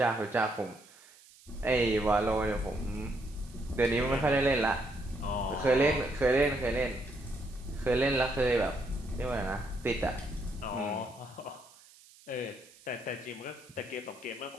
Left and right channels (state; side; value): noise; right; hiss, 24 dB below the sound